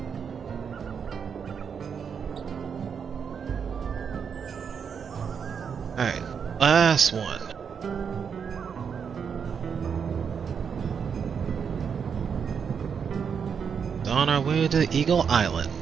Alright, last one. On our way to Eagle Island,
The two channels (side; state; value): left; quieter; 6.8 dB